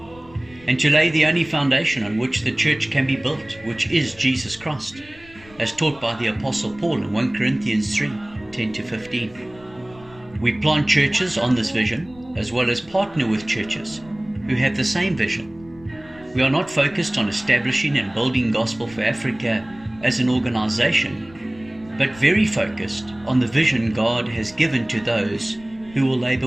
and to lay the only foundation on which the church can be built, which is Jesus Christ, as taught by the Apostle Paul in 1 Corinthians 3:10-15. We plant churches on this vision, as well as partner with churches who have the same vision. We are not focused on establishing and building Gospel for Africa as an organization, but very focused on the vision God has given to those who will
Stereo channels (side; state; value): left; noise; rumble, 24 dB below the sound